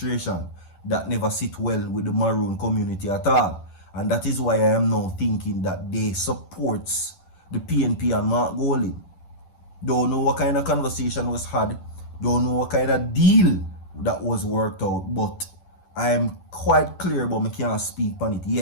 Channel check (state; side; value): late; right; 10 ms